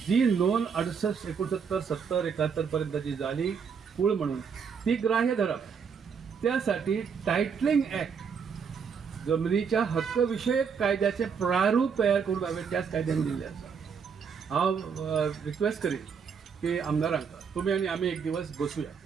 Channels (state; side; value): quieter; left; 6.4 dB